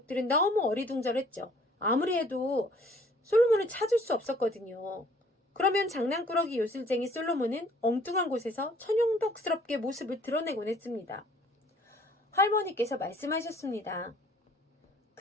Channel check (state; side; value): normal; both; correlation 0.57